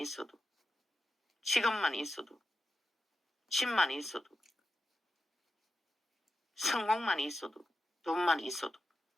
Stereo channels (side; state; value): both; normal; correlation 0.91